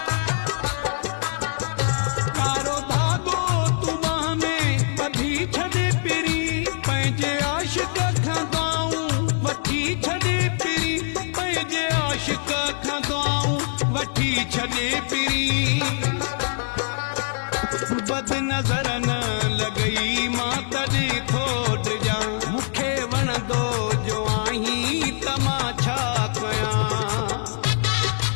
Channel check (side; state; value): right; silent; digital silence